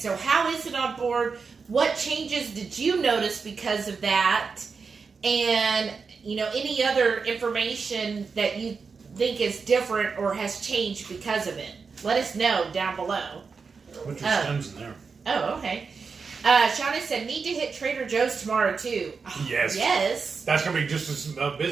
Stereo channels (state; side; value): quieter; left; 5.1 dB